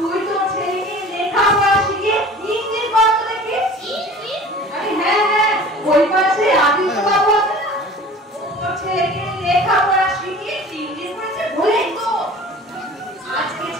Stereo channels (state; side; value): normal; both; correlation 0.43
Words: তো ছেলেকে লেখাপড়া শিখে ইংলিশ বলতে দেখি। হ্যাঁ